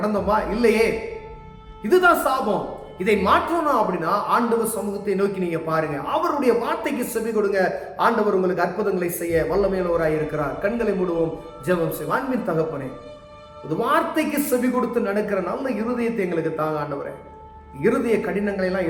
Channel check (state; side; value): identical; both; correlation 1.00